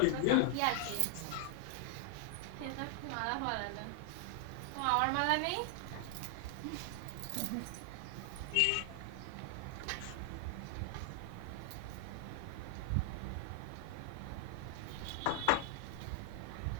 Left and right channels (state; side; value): different; both; correlation 0.00